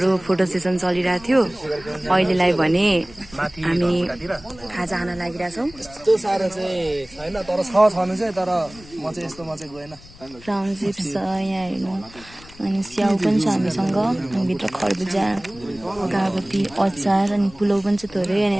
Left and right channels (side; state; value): left; noise; rumble, 21 dB below the sound